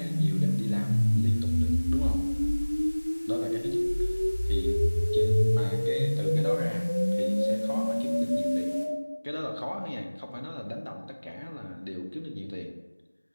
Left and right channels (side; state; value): both; inverted; correlation -1.00